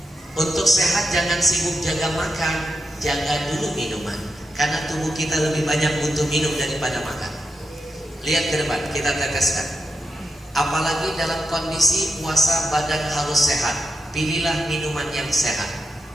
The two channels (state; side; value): normal; both; correlation 0.86